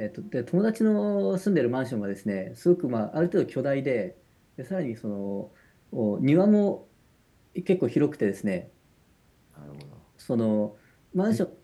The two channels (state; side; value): identical; both; correlation 1.00